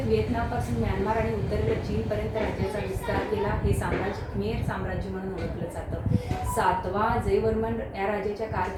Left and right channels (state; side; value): identical; both; correlation 1.00